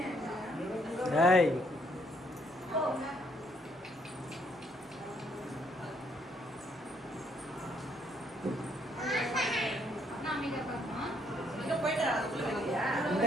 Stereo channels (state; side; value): normal; both; correlation 0.69